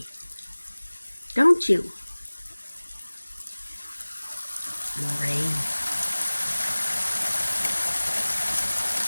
Don't you? More rain.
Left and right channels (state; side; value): inverted; both; correlation -1.00